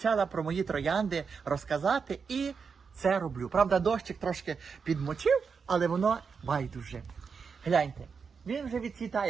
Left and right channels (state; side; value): quieter; left; 5.7 dB